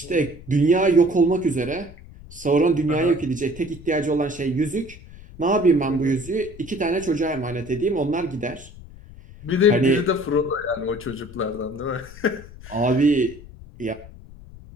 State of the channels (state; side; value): noise; left; rumble, 18 dB below the sound